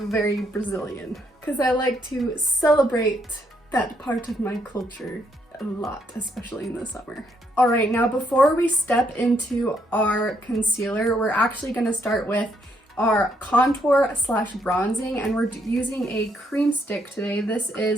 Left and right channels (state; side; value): normal; both; correlation 0.73